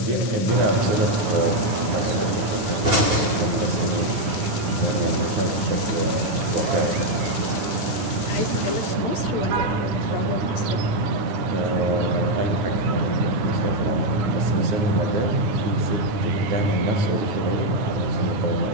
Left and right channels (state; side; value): late; left; 9.3 ms